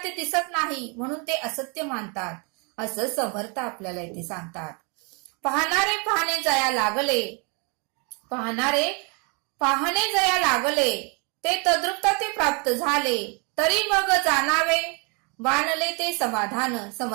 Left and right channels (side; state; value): left; quieter; 34.0 dB